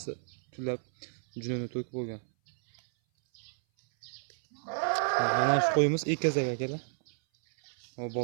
tulab junini to'kib bo'lgan. Mana shu qo'yimiz egizak akalar. O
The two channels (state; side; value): silent; left; 57 dB below the other